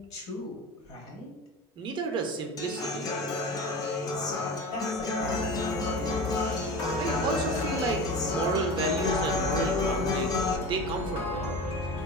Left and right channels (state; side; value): normal; both; correlation 0.31